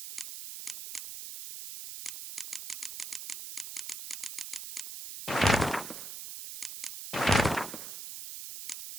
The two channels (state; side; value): noise; right; hiss, 9 dB below the sound